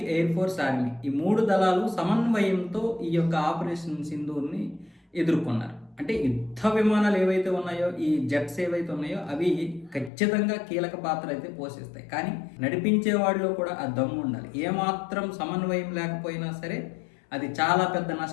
ఎయిర్ ఫోర్స్, ఆర్మీ, ఈ 3 దళాలు సమన్వయంతో ఈ యొక్క ఆపరేషన్ సింధూర్ని ఎదుర్కొన్నారు. అంటే యుద్ధ విమానాలు ఏవైతే ఉన్నాయో, ఈ జెట్స్ ఏవైతే ఉన్నాయో అవి ఖచ్చితంగా కీలక పాత్ర అయితే పోషిస్తాయి. కానీ నడిపించే వాళ్ళలో కూడా ఆ దమ్ము ఉండాలి. ఏమాత్రం సమన్వయం లేకపోయినా సరే అది చాలా పెద్ద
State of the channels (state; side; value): drops out; right; at 10.1 s